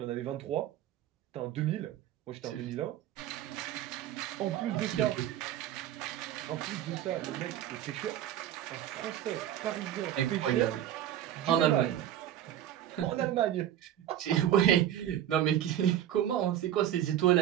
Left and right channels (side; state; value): left; quieter; 11.5 dB